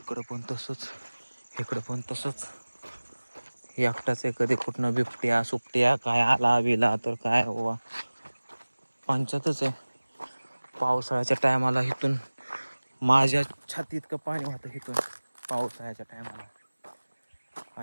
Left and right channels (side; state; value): both; inverted; correlation -1.00